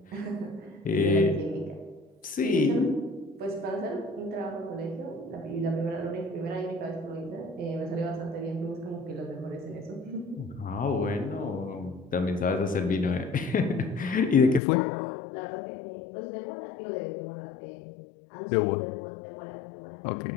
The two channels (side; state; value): right; drops out; at 14.6 s